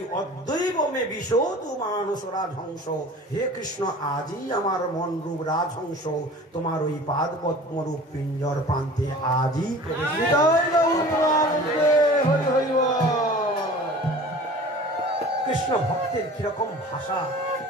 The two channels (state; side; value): normal; both; correlation 0.42